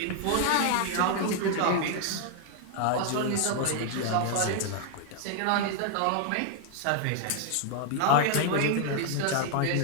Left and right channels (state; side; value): different; both; correlation 0.00